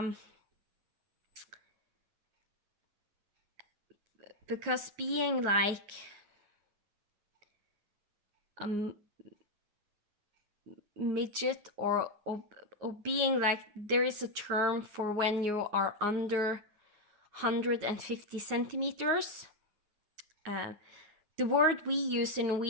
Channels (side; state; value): left; late; 9.6 ms